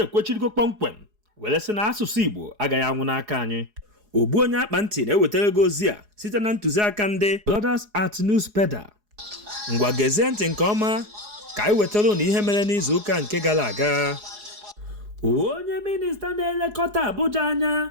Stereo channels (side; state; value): left; late; 4.8 ms